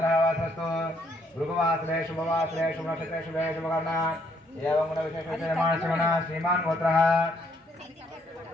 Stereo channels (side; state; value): both; normal; correlation 0.69